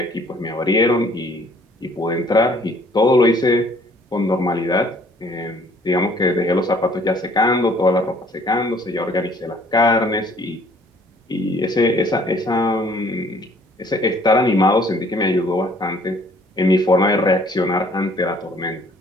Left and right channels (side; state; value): both; normal; correlation 0.59